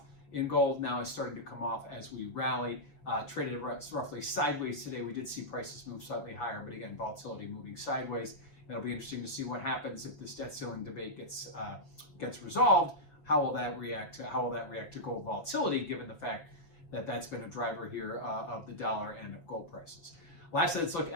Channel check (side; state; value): right; late; 6.0 ms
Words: in gold, now is starting to come off as we rally. Traded roughly sideways today. We did see prices move slightly higher, but again, volatility moving sideways. It'll be interesting to see what happens if this debt ceiling debate gets resolved. How will that react to gold volatility, given the fact that that's been a driver here of the dollar and of gold prices. Lastly, let's look